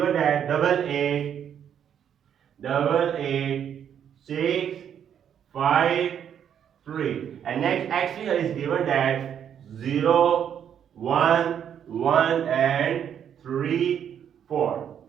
that double 8, 6, 5, 3. And next x3 is given that 0, 1, 1 and 3, 4.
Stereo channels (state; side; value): quieter; left; 8.9 dB